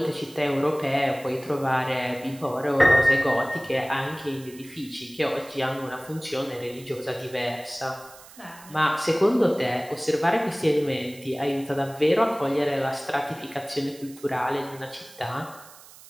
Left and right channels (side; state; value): right; noise; hiss, 20 dB below the sound